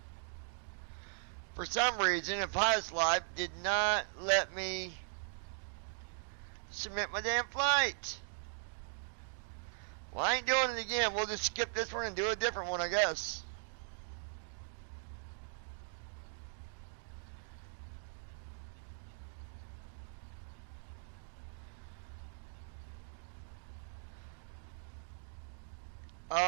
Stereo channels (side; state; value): left; silent; digital silence